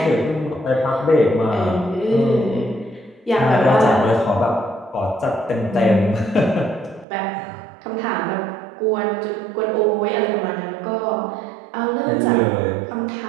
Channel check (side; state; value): left; drops out; at 7.1 s